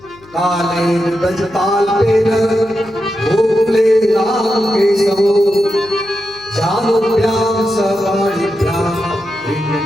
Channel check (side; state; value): left; noise; hum, 26 dB below the sound